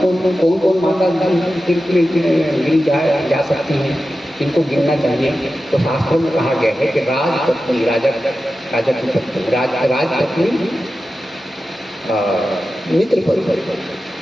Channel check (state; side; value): normal; both; correlation 0.93